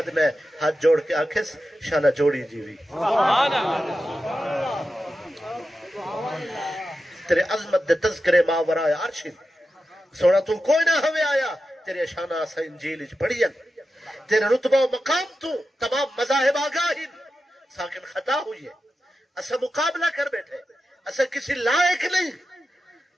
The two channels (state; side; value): normal; both; correlation 0.91